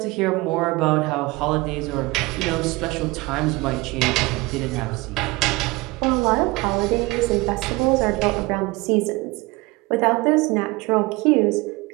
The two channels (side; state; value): left; quieter; 22.9 dB